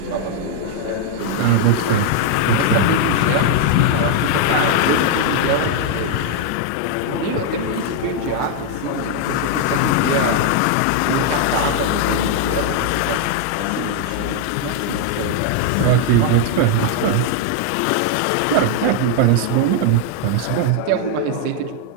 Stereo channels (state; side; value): different; both; correlation 0.00